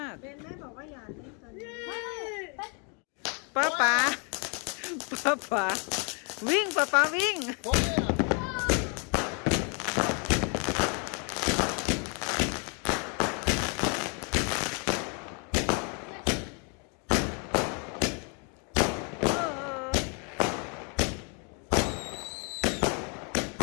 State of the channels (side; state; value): right; quieter; 36.9 dB